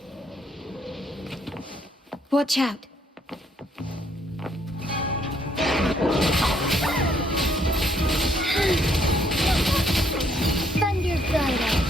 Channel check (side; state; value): both; normal; correlation 0.69